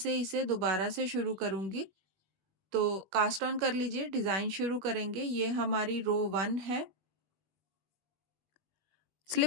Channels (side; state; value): left; late; 21 ms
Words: इसे दोबारा से शुरू करूँगी। तो कास्ट ऑन कर लीजिए, डिज़ाइन शुरू करेंगे। ये हमारी रो 1 है।